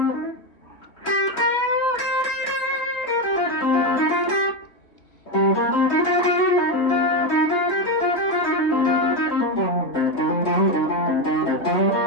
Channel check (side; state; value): right; late; 3.3 ms